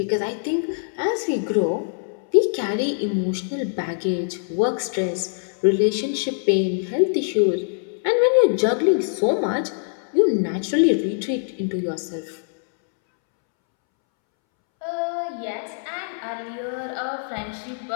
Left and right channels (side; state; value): right; silent; 63 dB below the other